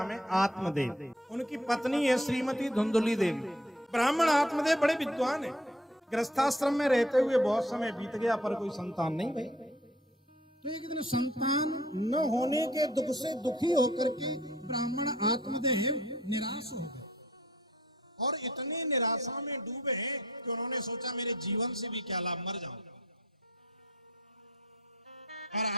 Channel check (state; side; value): normal; both; correlation 0.57